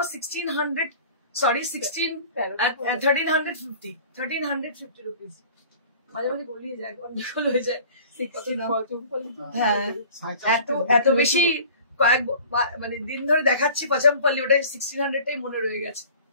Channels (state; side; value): inverted; both; correlation -0.45